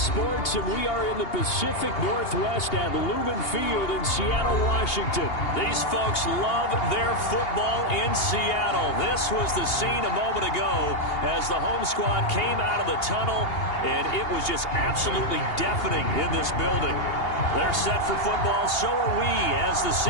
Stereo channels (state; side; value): late; right; 2.8 ms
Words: and we are in the Pacific Northwest at Lumen Field in Seattle, Washington. These folks love their football in Seattle. This was the scene a moment ago as the home squad came out of the tunnel, and it was just absolutely deafening in this building. They're set for football, so are we, as the